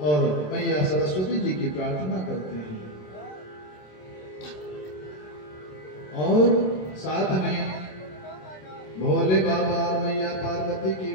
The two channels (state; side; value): late; right; 27 ms